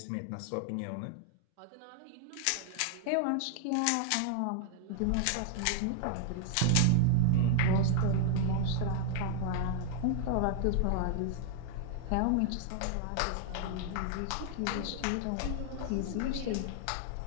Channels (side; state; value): both; different; correlation 0.00